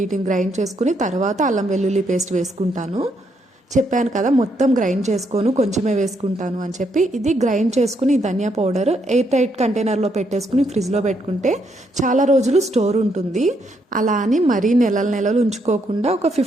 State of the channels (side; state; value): both; normal; correlation 0.75